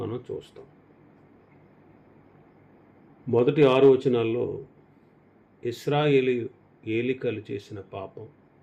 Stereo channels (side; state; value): both; identical; correlation 1.00